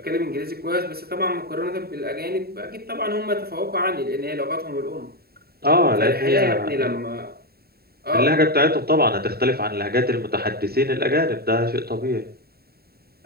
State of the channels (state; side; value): late; left; 0.45 ms